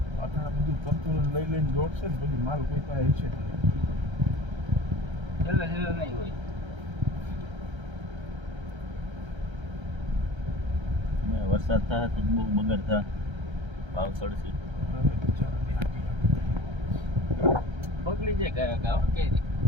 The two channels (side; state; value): left; late; 1.3 ms